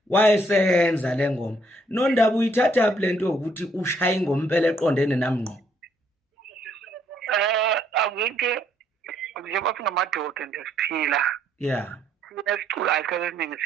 wayesenza le ngoma nondaba uyithatha lento ukuthi ushaya ingoma impela eqondene nami ngqo. Awike njengoba singamadoda nje siphila. Yeah. Sinesicula isikhathi esiningi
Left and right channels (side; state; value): both; normal; correlation 0.69